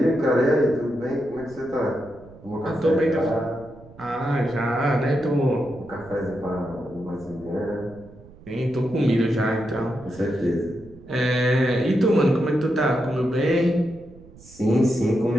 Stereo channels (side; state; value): right; noise; rumble, 21 dB below the sound